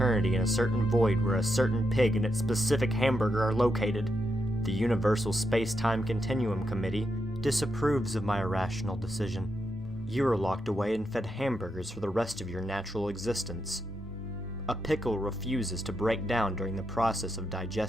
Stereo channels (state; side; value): normal; both; correlation 0.83